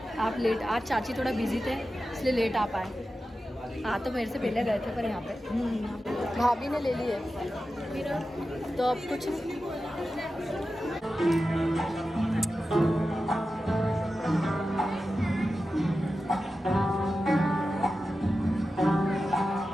लेट, आज चाची थोड़ा बिजी थे इसलिए लेट आ पाए। हाँ तो मेरे से पहले गए थे पर यहाँ पे भाभी ने ले ली है तो अब कुछ नहीं।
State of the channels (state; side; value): normal; both; correlation 0.92